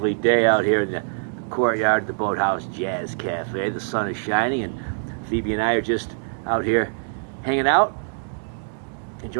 day out here in the courtyard of the Boathouse Jazz Cafe. The sun is shining, and Phoebe and I are just out here hanging out,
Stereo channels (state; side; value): silent; left; digital silence